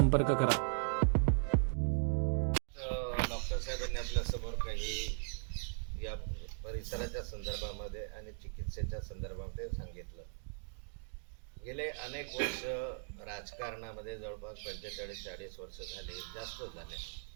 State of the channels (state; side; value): silent; left; digital silence